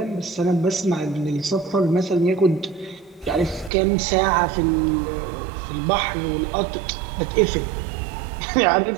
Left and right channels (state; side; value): drops out; left; at 3.7 s